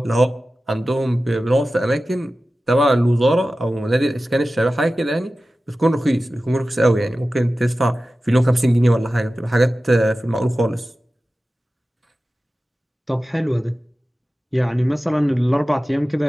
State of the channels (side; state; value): both; normal; correlation 0.95